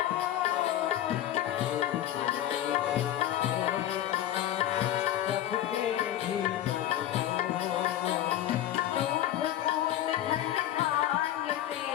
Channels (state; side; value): quieter; right; 12.2 dB